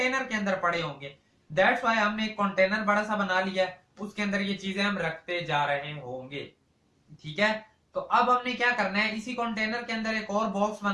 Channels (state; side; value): identical; both; correlation 1.00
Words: के अंदर पड़े होंगे। दैट्स व्हाई हमने एक कंटेनर बड़ा सा बना लिया, उसके अंदर ये चीजें हम रखते जा रहे होंगे, ठीक है। तो अब हमने क्या करना है, इसी कंटेनर के अंदर एक और बॉक्स